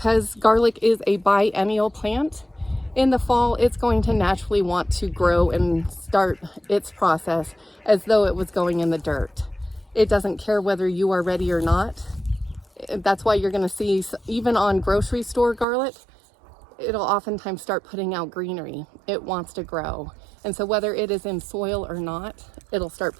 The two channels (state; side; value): drops out; left; at 15.7 s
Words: garlic is a biennial plant. In the fall, it's going to naturally want to grow and start its process as though it was going in the dirt. It doesn't care whether you are ready or not. That's why you're going to see, even on grocery store garlic, it'll oftentimes start putting out greenery. It wants to grow. And so whether it is in soil or not, it'll start